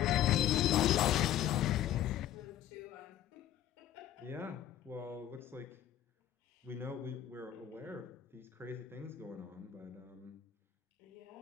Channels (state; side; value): quieter; right; 11.5 dB